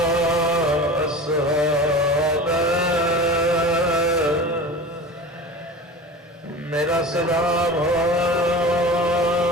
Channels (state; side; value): normal; both; correlation 0.34